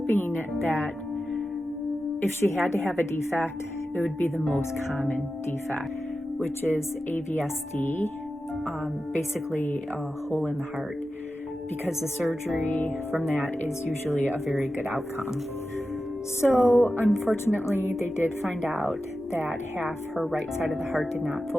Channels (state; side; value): normal; both; correlation 0.93